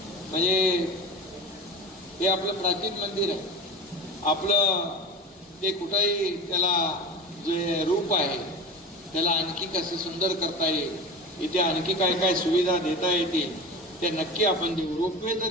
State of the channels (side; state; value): both; normal; correlation 0.31